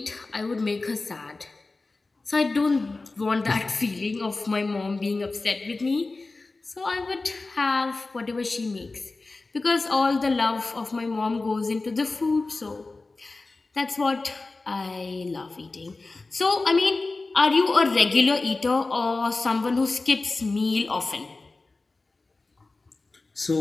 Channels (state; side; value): quieter; right; 3.5 dB